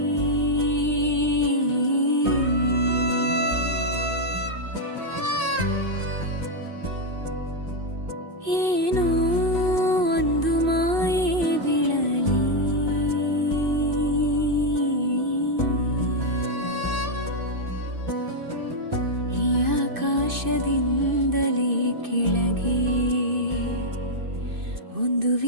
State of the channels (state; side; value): late; left; 2.6 ms